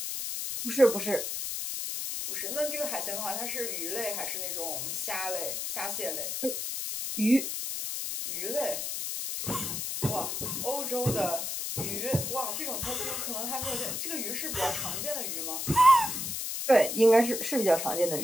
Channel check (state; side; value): noise; left; hiss, 3 dB below the sound